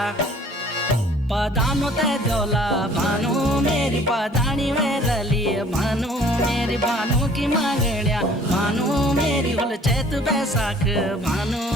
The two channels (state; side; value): normal; both; correlation 0.54